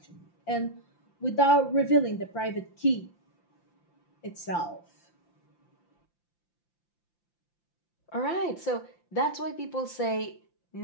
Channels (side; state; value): right; late; 5.8 ms